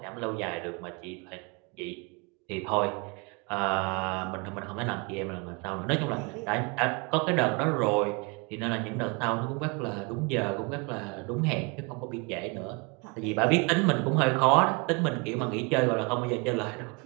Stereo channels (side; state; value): left; quieter; 30.9 dB